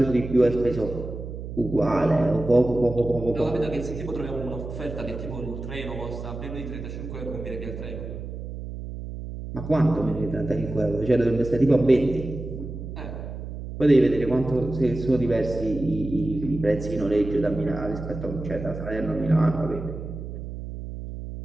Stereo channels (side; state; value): right; noise; hum, 9 dB below the sound